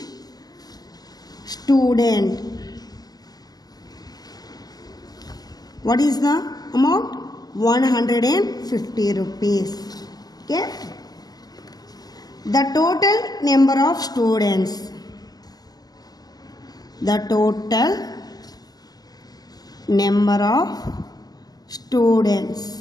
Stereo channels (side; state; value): right; late; 0.19 ms